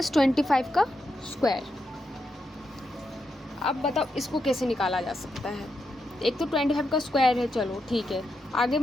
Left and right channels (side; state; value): both; normal; correlation 0.84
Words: का स्क्वायर। अब बताओ इसको कैसे निकाला जा सकता है। एक तो 25 का स्क्वायर है, चलो ठीक है, आगे